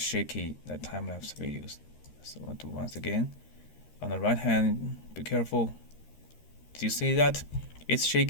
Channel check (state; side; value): late; right; 13 ms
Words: time-lapse videos. So I'll do once again. On the right hand, be careful. Do you see that? It's